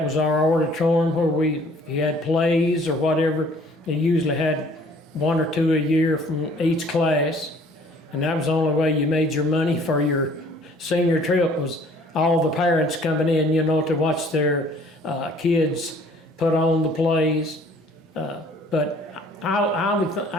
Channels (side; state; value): both; normal; correlation 0.56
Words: was our auditorium where if you had plays or whatever, you usually had 1 or 2 a year from each class. And that was the only way you made your money for your senior trip, was all the parents coming in, to watch their kids put on the plays. But